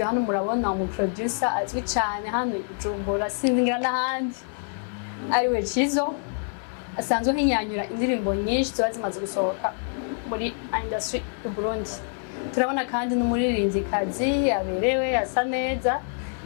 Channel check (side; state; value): right; silent; 61 dB below the other